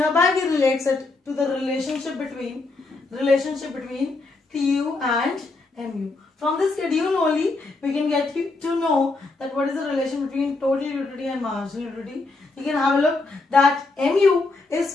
we relates it to the relationship between TU and MU. From this schedule only we can get you to know that what is the relation between total utility and marginal utility. You can have a look that MU is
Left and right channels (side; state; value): right; quieter; 3.5 dB